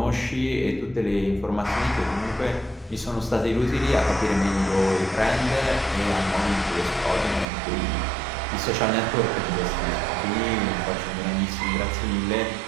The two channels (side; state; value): left; drops out; at 7.5 s